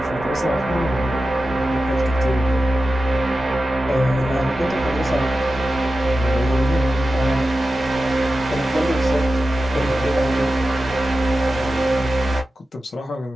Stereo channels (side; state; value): both; normal; correlation 0.92